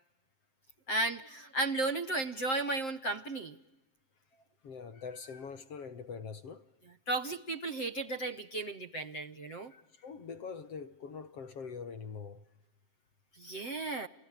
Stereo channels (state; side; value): late; right; 7.6 ms